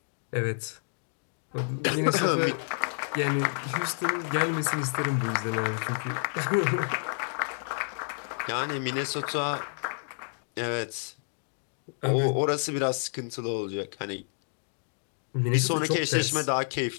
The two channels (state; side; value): silent; right; digital silence